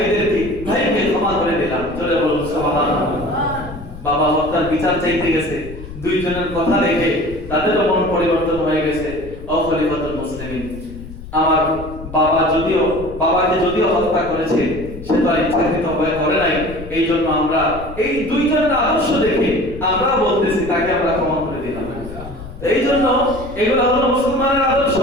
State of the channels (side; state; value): left; noise; rumble, 13 dB below the sound